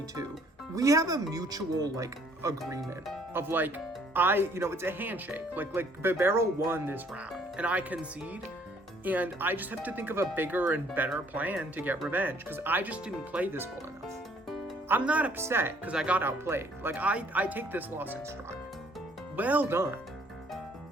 too. We have a mutual, like, agreement of, like, it's a handshake. Like bibarel won this round, and I concede, and I just have to think of a bigger and better plan to get revenge, because I just didn't play this well enough. I'm not upset because I got outplayed. Like, I take this loss in stride. Well done.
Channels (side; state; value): both; normal; correlation 0.61